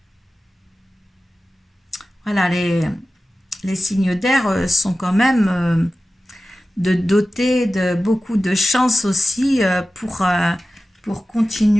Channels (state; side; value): normal; both; correlation 0.95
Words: Voilà, les signes d'air sont quand même... de doter de beaucoup de chance aussi pour